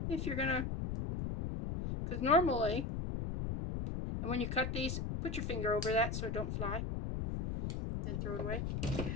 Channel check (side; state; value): left; noise; rumble, 2 dB below the sound